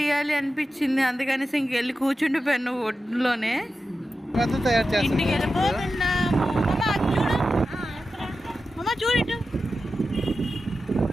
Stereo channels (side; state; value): both; normal; correlation 0.92